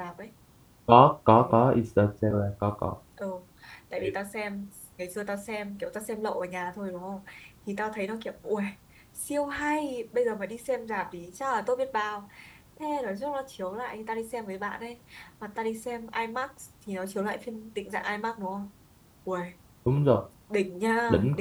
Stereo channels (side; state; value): both; identical; correlation 1.00